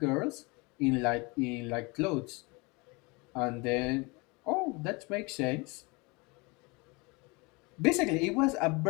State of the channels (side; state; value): right; quieter; 27.1 dB